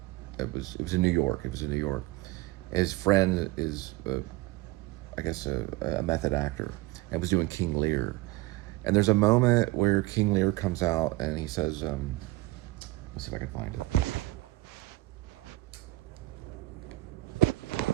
it was in New York. It was in New York. His friend is, I guess, a method actor, and was doing King Lear. And there's a moment where King Lear comes out and he says, let's see if I can find it.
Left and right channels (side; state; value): left; quieter; 18.7 dB